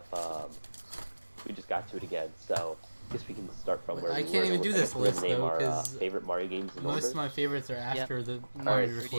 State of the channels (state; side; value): inverted; both; correlation -1.00